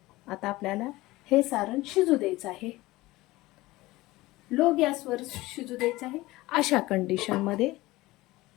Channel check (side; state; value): right; quieter; 19.2 dB